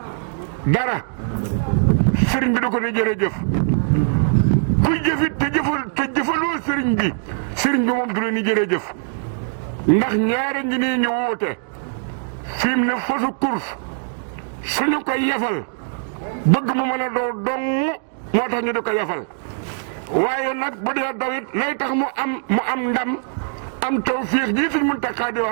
dara sëriñ bi da ko ne jërëjëf kuy jëfit te jëfaloo sëriñ bi moom du la ni jërëjëf ndax ñaare ngi nii ñu woote fi mu ne fasu course suñu koy yefal bëgg mu mën a doo dong moo tax ñu di ko yefal waaye nag bu dee dawit lay tax mu am ndam am tawfiix ji Sëñ Muntaxa di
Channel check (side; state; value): left; silent; digital silence